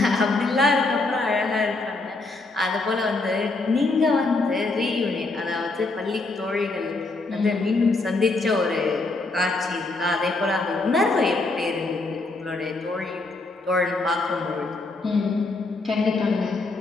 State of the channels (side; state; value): right; quieter; 3.3 dB